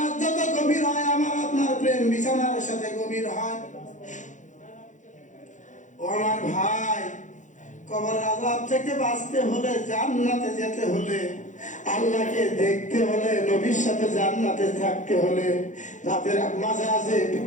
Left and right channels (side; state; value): right; late; 0.36 ms